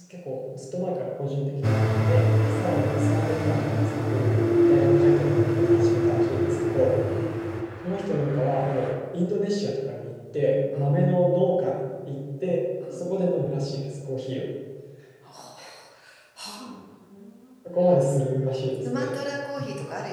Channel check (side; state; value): both; identical; correlation 1.00